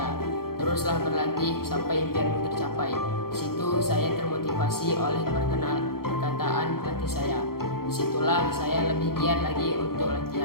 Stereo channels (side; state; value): right; late; 0.94 ms